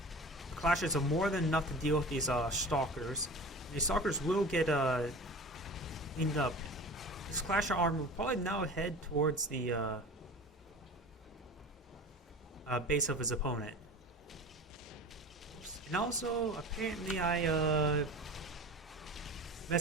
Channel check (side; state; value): both; normal; correlation 0.36